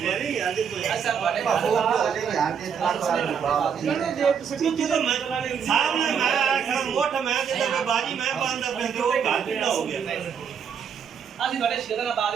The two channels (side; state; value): left; quieter; 7.2 dB